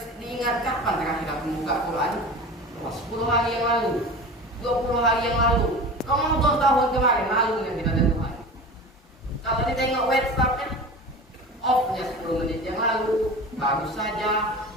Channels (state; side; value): normal; both; correlation 0.34